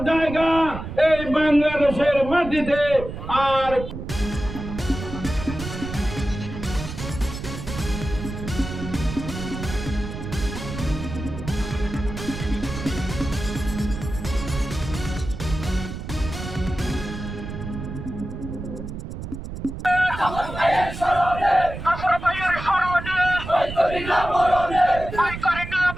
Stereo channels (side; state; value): right; noise; rumble, 8 dB below the sound